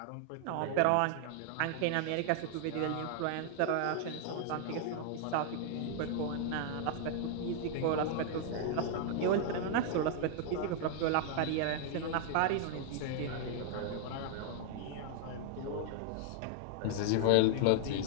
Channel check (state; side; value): different; both; correlation 0.00